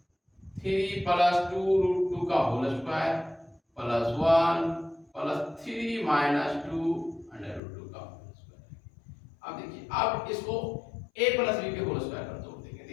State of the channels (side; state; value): right; drops out; at 7.6 s